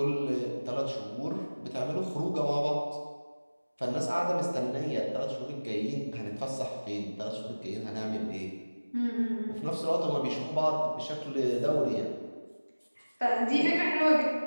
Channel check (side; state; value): both; inverted; correlation -1.00